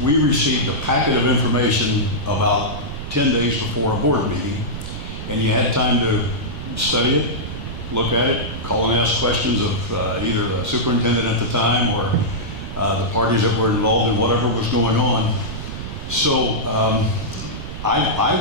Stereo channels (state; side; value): noise; right; rumble, 8 dB below the sound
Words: we received a packet of information about 10 days before a board meeting, and you had time to study it, look at it, call and ask questions of either the superintendent at the time or the parties that were involved in whatever was going on. So I